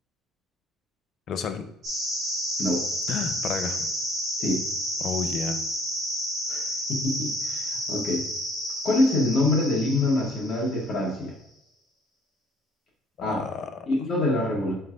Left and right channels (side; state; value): both; normal; correlation 0.60